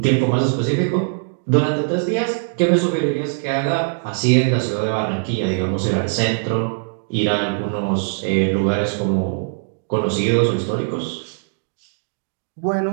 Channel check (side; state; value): left; silent; digital silence